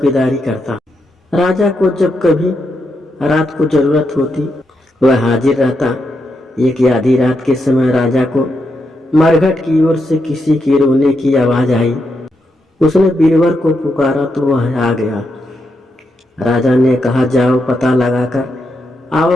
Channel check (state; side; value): normal; both; correlation 0.83